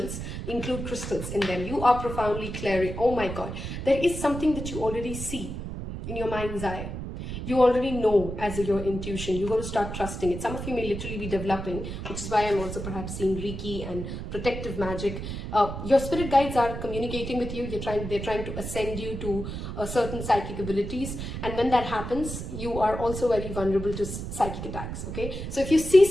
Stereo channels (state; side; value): noise; right; rumble, 7 dB below the sound